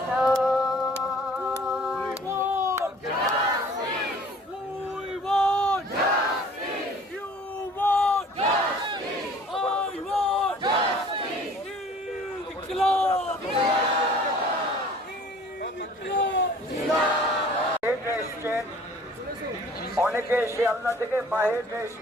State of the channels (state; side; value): normal; both; correlation 0.51